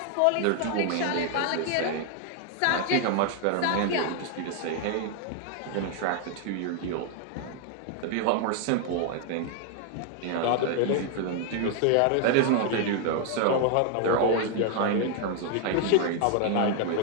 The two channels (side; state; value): both; different; correlation 0.00